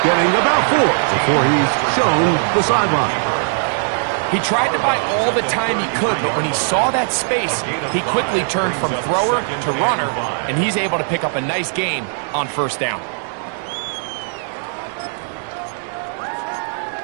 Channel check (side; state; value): left; silent; digital silence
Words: getting about 4 before he's shown the sideline. He tried to buy all the time he could, but when he saw that space, he quickly turned from thrower to runner, and he's able to pick up a nice gain on first down.